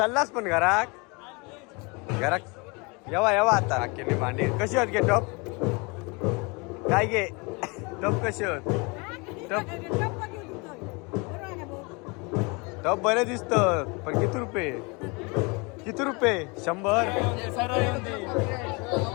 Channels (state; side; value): quieter; right; 29.0 dB